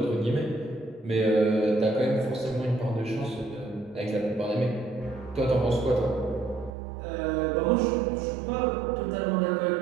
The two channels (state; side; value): drops out; left; at 6.7 s